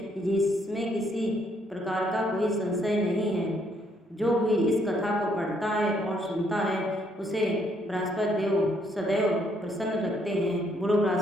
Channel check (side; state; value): both; normal; correlation 0.70